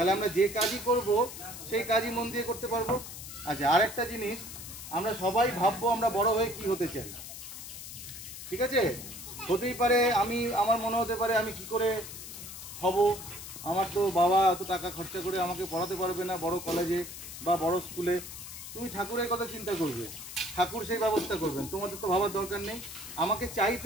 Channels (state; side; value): noise; left; hiss, 11 dB below the sound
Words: আমরা যে কাজই করব সেই কাজই মন দিয়ে করতে পারবো। আচ্ছা, আরেকটা জিনিস, আমরা সবাই ভাববো আমরা বড় হয়ে কি হতে চাই। ঠিক আছে? হতেই পারে আমার মনে হতে পারে আমি কি করে হব, আমার তো বাবা এত টাকা খরচা করে আমাকে পড়াতে পারবে না বড় কলেজে বা বড় স্কুলে। তুমি ঠাকুরের কথা চিন্তা করবে, ঠাকুর সেই ব্যবস্থা করবেন, তোমাদের তো ভাবার দরকার নেই। আমাকে চাইতে